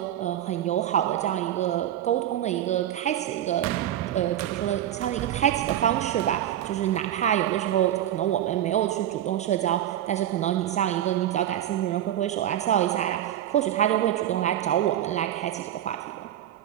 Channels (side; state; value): left; quieter; 11.8 dB